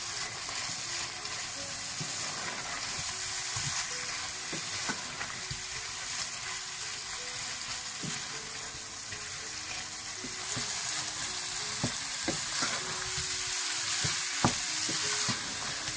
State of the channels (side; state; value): both; identical; correlation 1.00